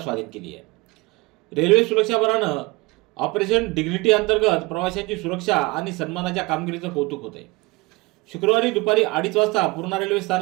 स्वाधीन केली आहे। रेल्वे सुरक्षा बलानं ऑपरेशन डिग्निटी अंतर्गत प्रवाशांची सुरक्षा आणि सन्मानाच्या कामगिरीचं कौतुक होते। शुक्रवारी दुपारी 2:30 वाजता पूर्णा रेल्वे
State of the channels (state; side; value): quieter; left; 24.0 dB